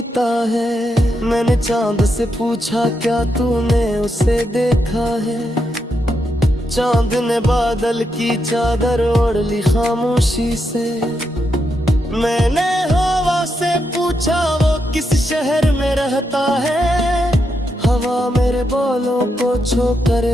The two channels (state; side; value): normal; both; correlation 0.83